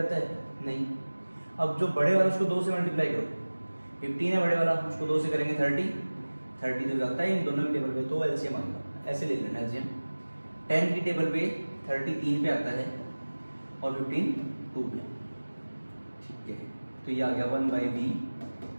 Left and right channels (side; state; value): both; inverted; correlation -1.00